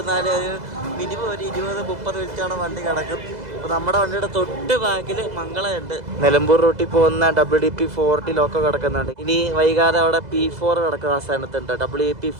ഒരു മിനിമം ഒരു 20-30 മിനിറ്റാണ് വണ്ടി കിടക്കും. അപ്പോൾ നമ്മുടെ വണ്ടിയുടെ തൊട്ട് ബാക്കിൽ മംഗളമുണ്ട്. നിലമ്പൂർ റൂട്ടിൽ പോകുന്ന WDP4 ലോക്കോ കിടക്കുന്നുണ്ട്. ഇനി വൈകാതെ അവിടെ P4 കിടക്കും. ആ സ്ഥാനത്തുണ്ട്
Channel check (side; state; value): left; late; 2.0 ms